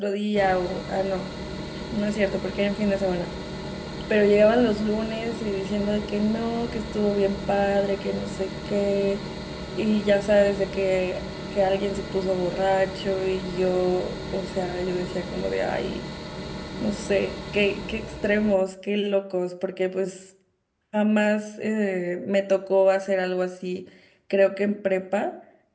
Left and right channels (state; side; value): identical; both; correlation 1.00